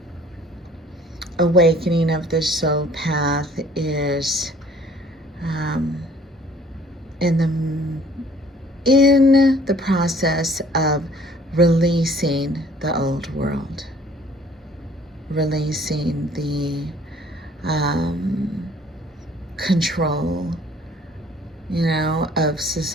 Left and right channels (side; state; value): both; normal; correlation 0.56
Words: awakening of the soul path is um, in the process of releasing the old world, releasing the control, of